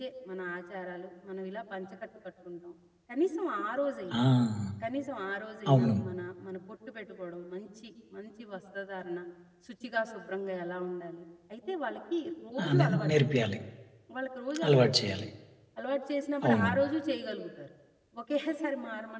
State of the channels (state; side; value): identical; both; correlation 1.00